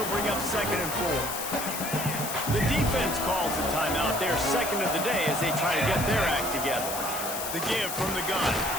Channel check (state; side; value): noise; left; hiss, 5 dB below the sound